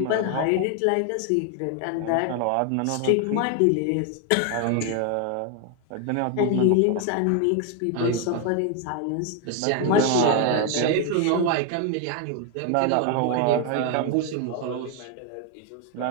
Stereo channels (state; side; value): different; both; correlation 0.01